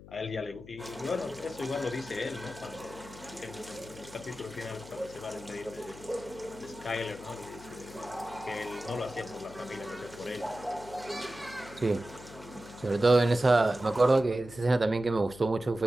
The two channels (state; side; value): noise; left; hum, 17 dB below the sound